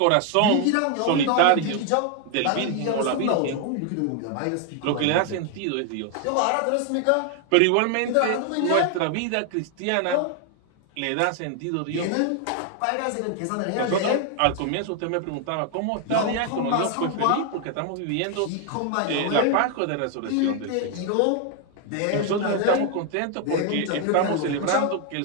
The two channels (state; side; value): different; both; correlation 0.00